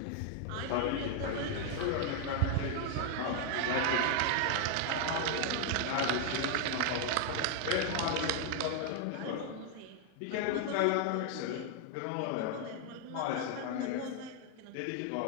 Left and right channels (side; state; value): both; different; correlation 0.00